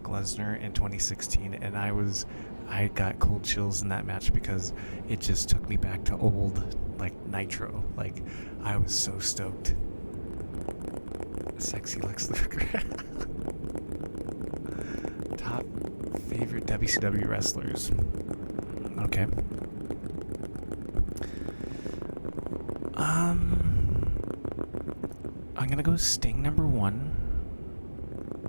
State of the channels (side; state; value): both; inverted; correlation -1.00